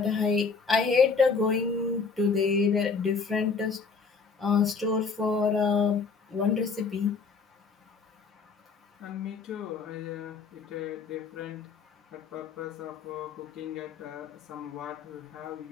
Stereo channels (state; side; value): quieter; right; 5.0 dB